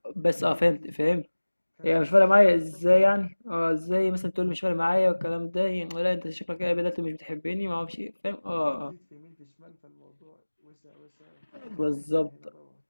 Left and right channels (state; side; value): inverted; both; correlation -1.00